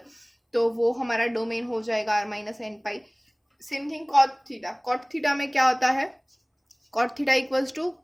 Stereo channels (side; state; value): both; identical; correlation 1.00